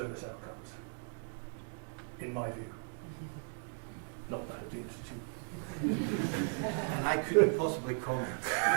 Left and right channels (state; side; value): silent; left; 53 dB below the other